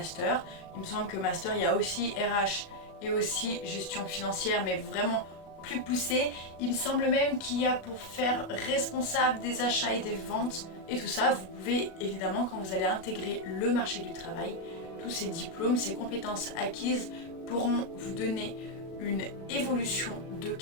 Il me semble que master, il y a aussi RH et aussi gestion financière, mais vraiment plus poussé. Il me semble même qu'il y a pour faire responsable des achats et des ventes. Et tout ça, vous pouvez évidemment, quand vous allez intégrer le marché du travail, tous ces diplômes, ces compétences acquises pourront vous donner une évolution de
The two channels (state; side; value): late; right; 37 ms